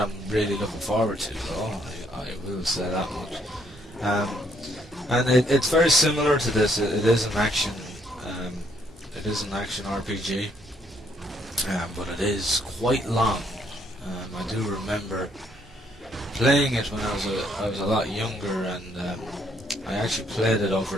I'm really looking forward to, though. I will say that much. And it's very similar to this. It is an action. It is an action RPG, but it is quite long. I do remember playing it when I was a lot younger, and I actually played it over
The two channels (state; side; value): normal; both; correlation 0.69